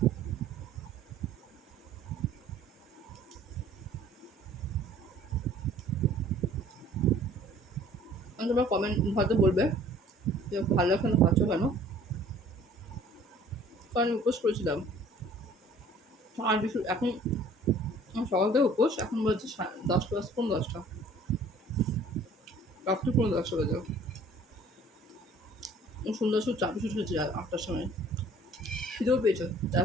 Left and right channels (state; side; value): normal; both; correlation 0.53